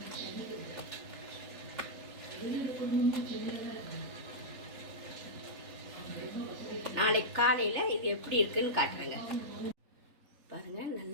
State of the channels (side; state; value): left; late; 3.3 ms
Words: நாளைக்கு காலையில் இது எப்படி இருக்குன்னு காட்டுறேங்க. பாருங்கள்,